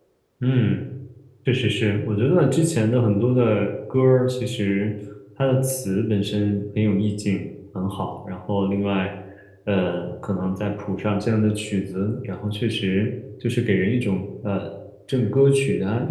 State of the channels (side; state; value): both; identical; correlation 1.00